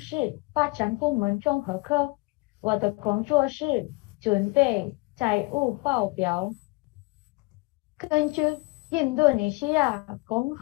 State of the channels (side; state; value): right; quieter; 26.2 dB